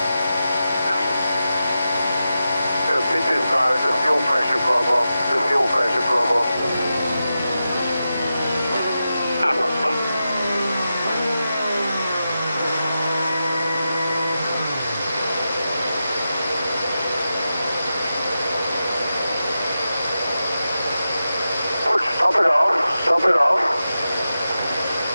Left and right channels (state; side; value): inverted; both; correlation -0.91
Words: This is the fuel pressure problem. The fuel pressure problem. Stop it off. Stop it off.